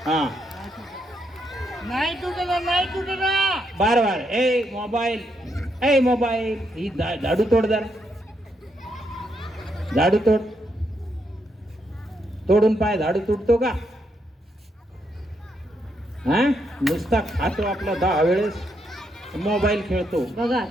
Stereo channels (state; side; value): normal; both; correlation 0.78